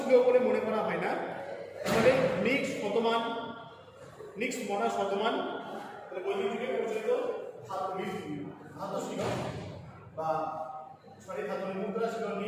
বলে মনে করা হয় না। তাহলে নিক্স শতমান, নিক্স মনা শতমান, তাহলে বৈদিক যুগে প্রচলিত ধাতু ছিল বা ধাতুর মুদ্রা ছিল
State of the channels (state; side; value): identical; both; correlation 1.00